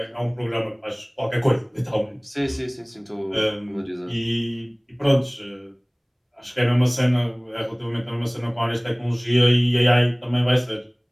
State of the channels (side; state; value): both; identical; correlation 1.00